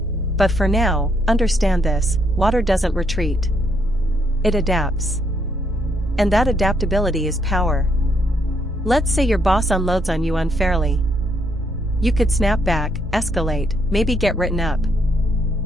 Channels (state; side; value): normal; both; correlation 0.74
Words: But for now, understand this, water doesn't retreat. It adapts. And that adaptability is power. Let's say your boss unloads on you unfairly. You could snap back, escalate, maybe get written up.